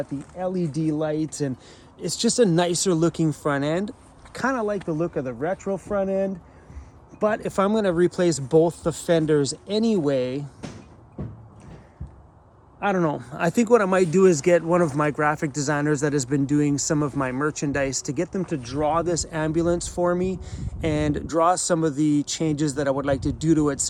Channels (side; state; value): both; identical; correlation 1.00